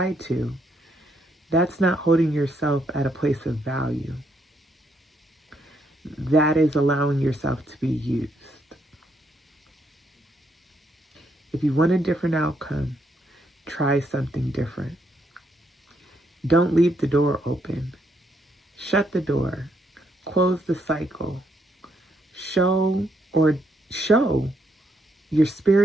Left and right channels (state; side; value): normal; both; correlation 0.75